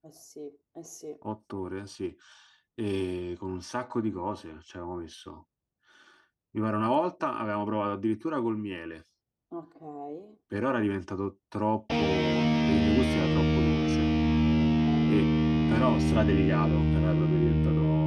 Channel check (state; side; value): identical; both; correlation 1.00